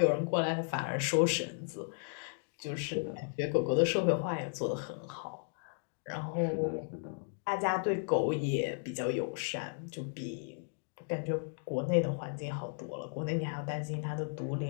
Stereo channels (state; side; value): silent; right; digital silence